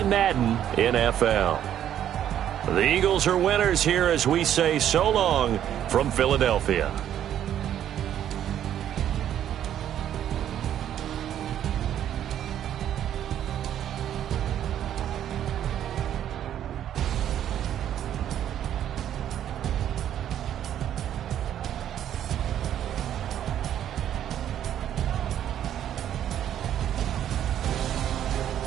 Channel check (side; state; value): left; quieter; 10.6 dB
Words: Madden NFL. The Eagles are winners here as we say so long from Philadelphia.